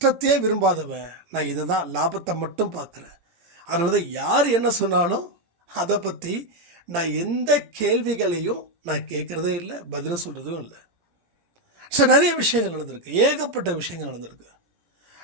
விரும்பாதவன், நான் இதை தான் லாபத்தை மட்டும் பார்க்குறேன். அதனால தான் யார் என்ன சொன்னாலும் அதை பற்றி நான் எந்த கேள்விகளையும் நான் கேட்குறதே இல்லை, பதில் சொல்கிறதும் இல்லை. ஸோ நிறைய விஷயங்கள் நடந்திருக்கு, ஏகப்பட்ட விஷயங்கள் நடந்திருக்கு.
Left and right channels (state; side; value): late; left; 18 ms